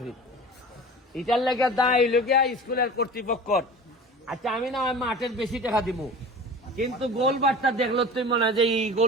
এটার লেগে দায় লগিয়া স্কুলের কর্তৃপক্ষ। আচ্ছা আমি না মাঠের বেশি টাকা দিব, কিন্তু গোলবারটা দেখলো তুই মনে হয় যে এই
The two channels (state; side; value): normal; both; correlation 0.38